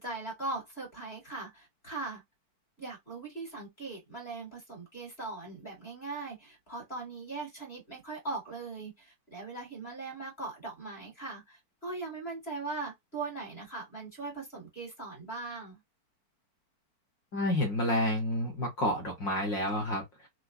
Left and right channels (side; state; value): right; late; 4.5 ms